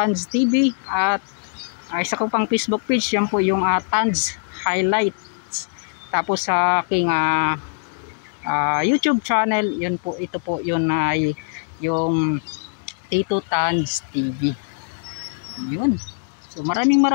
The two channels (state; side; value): silent; right; digital silence